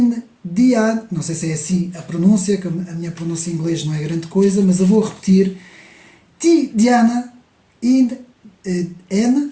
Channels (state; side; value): identical; both; correlation 1.00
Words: não sei se é assim a pronúncia, que a minha pronúncia em inglês não é grande coisa, mas eu vou repetir. Tidjana N,